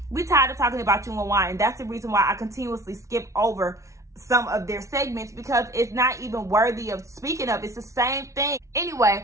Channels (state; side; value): late; left; 0.14 ms